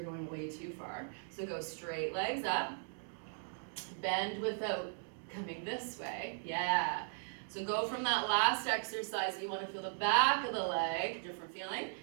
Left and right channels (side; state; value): left; silent; digital silence